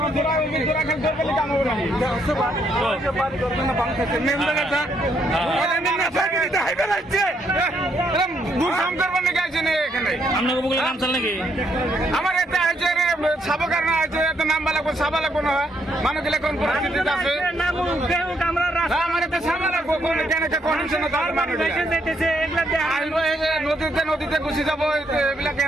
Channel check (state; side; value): normal; both; correlation 0.73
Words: আমার এটা হয়েছে সাবকার না হয়েছে এত নাম্বার লাগবো সাবা লাগবো না মানুষ গেলে কোন পরিস্থিতিতে আছে আমার এতে সাবা লাগবো কেন কন্ডিশন নদীতে নদীতে ঘুষি যাবো এগুলা